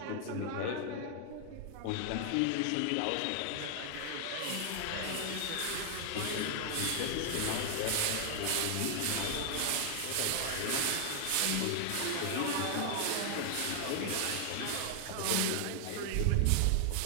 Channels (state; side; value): different; both; correlation 0.00